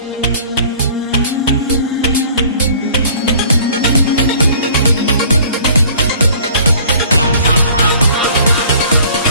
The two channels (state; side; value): inverted; both; correlation -0.51